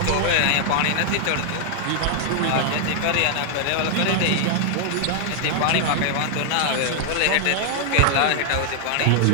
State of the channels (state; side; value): different; both; correlation 0.00